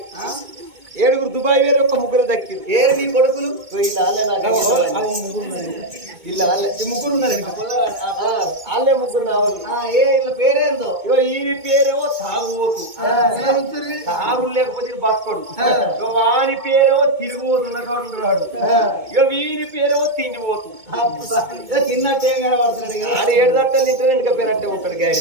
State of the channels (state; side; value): late; left; 2.2 ms